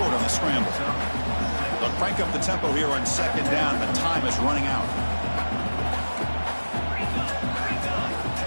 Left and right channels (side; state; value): both; inverted; correlation -1.00